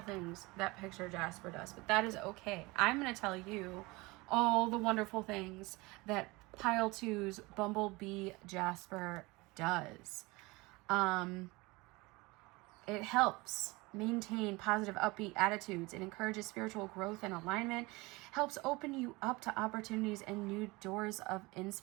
that Picture Jasper does, but that is okay. I'm going to tell you all the wonderful things that pile 2's Bumblebee Jasper does. It helps maintain positive, upbeat attitudes. It encourages spiritual growth and alignment, helps open you up to opportunities and new doors of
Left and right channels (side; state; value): left; quieter; 23.5 dB